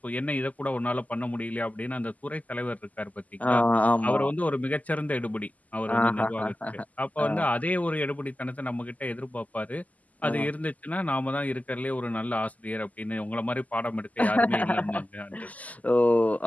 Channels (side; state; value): right; late; 0.076 ms